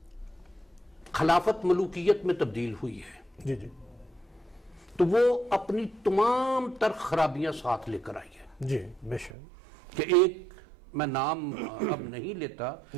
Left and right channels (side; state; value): left; drops out; at 9.3 s